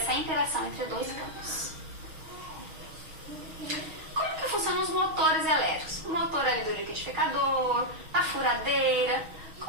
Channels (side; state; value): left; late; 6.2 ms